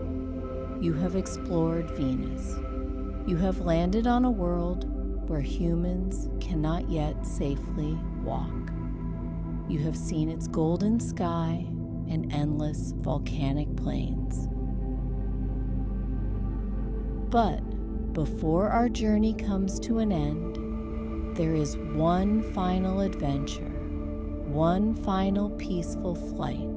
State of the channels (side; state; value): both; identical; correlation 1.00